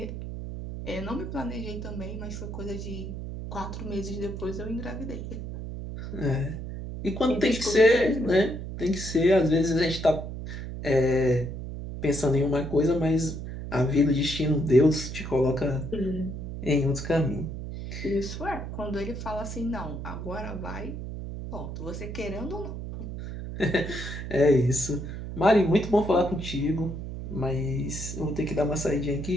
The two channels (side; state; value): right; noise; hum, 7 dB below the sound